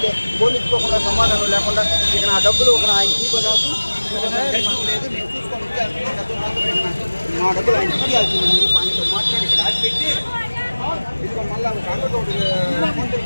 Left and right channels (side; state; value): both; inverted; correlation -1.00